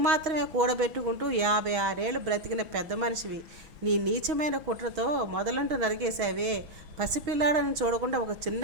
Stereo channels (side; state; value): left; late; 6.3 ms